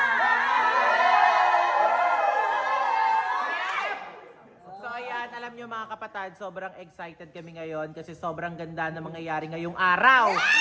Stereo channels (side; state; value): both; identical; correlation 1.00